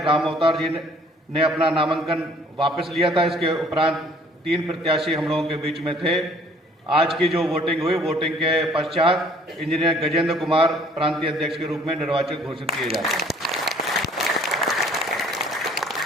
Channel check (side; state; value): both; normal; correlation 0.57